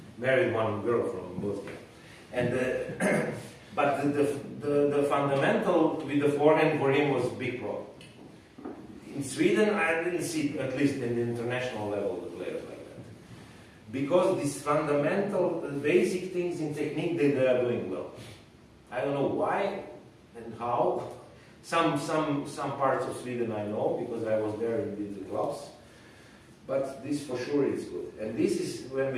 Married one girl from Bosnia. And but the fundamental with the forehand for him was a big problem. In Sweden, I didn't see, at least in the international level, the players like that. Because these fundamental, basic things in technique, they are doing well. I don't know why and how. Some parts of Sweden I know, because I was there and did the clubs. But this for sure is good. And this is when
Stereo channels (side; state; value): both; identical; correlation 1.00